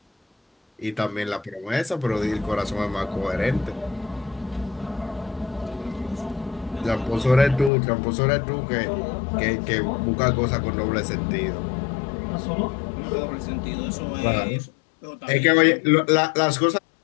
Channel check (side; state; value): right; drops out; at 7.7 s